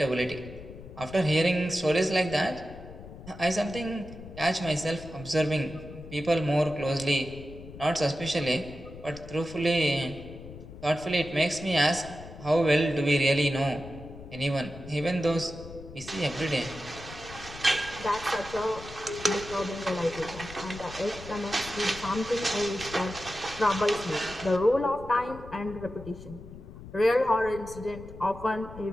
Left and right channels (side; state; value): left; noise; rumble, 15 dB below the sound